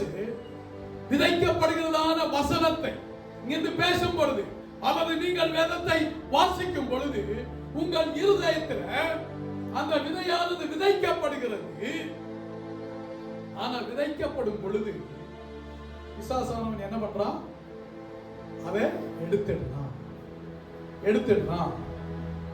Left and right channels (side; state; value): both; identical; correlation 1.00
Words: விதைக்கப்படுகிறதான வசனத்தை இங்கிருந்து பேசும் பொழுது அல்லது நீங்கள் வேதத்தை வாசிக்கும் பொழுது உங்கள் இருதயத்தில் அந்த விதையானது விதைக்கப்படுகிறது. ஆனா விதைக்கப்படும் பொழுது பிசாசானவன் என்ன பண்றான்? அதை எடுத்துடுறான்.